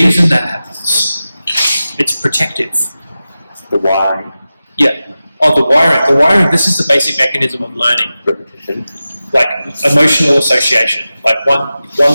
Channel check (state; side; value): inverted; both; correlation -0.94